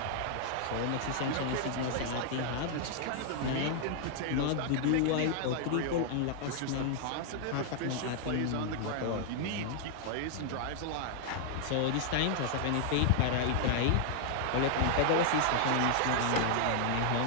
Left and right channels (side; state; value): both; different; correlation 0.00